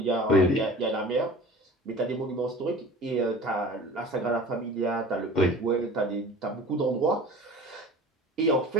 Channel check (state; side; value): normal; both; correlation 0.42